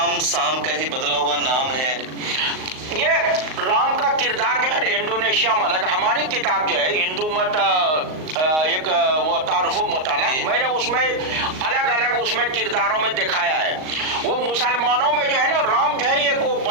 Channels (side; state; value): left; late; 38 ms